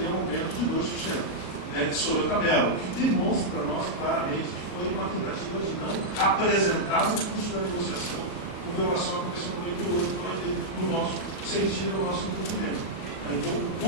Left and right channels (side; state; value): right; late; 38 ms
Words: um aumento de 2% sobre a tabela, o que demonstra para nós claramente que foi uma tentativa de não apresentar o custo da negociação com violação à Convenção 98, no nosso sentido, no nosso entendimento. Então, o